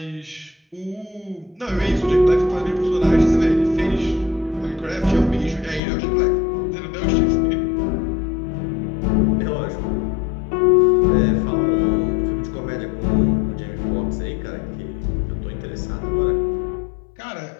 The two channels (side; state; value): right; drops out; at 5.8 s